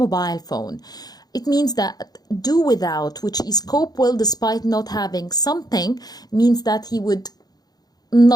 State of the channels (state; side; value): late; right; 0.19 ms